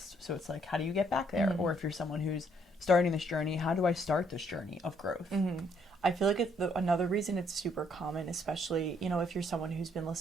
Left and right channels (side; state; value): both; normal; correlation 0.69